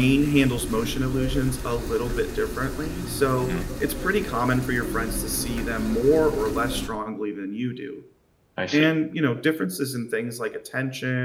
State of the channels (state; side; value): identical; both; correlation 1.00